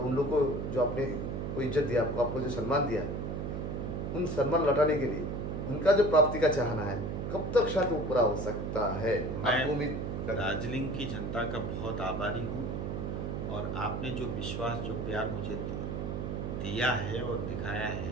उन लोगों को जो आपने को इज्जत दिया, आपको जो सम्मान दिया, उन सम्मान लौटाने के लिए उनका जो प्राप्ति का चाहना है, कब तक शायद वो पूरा हो सकता है? आपको उम्मीद मैं दार्जिलिंग की जनता का बहुत आभारी हूँ, और आपने जो विश्वास, जो प्यार मुझे दिया है और दिखाया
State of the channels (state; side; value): noise; right; hum, 3 dB below the sound